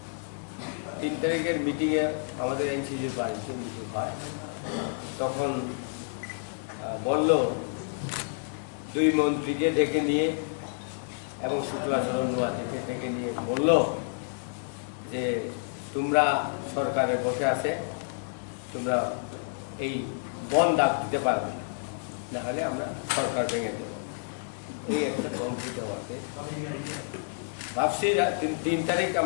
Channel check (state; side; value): silent; right; 58 dB below the other